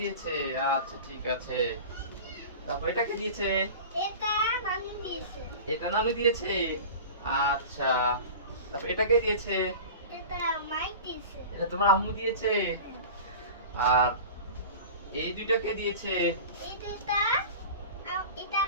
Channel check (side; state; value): both; inverted; correlation -0.35